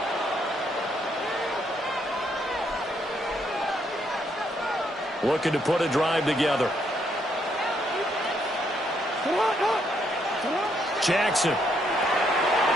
Looking to put a drive together. Jackson.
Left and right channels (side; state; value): both; normal; correlation 0.73